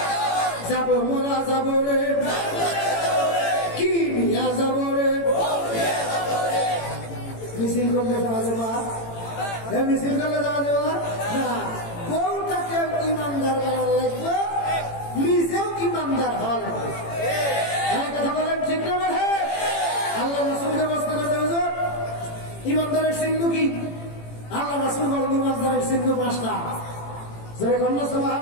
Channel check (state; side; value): late; right; 18 ms